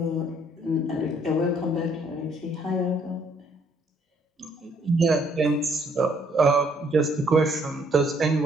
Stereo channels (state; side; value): normal; both; correlation 0.66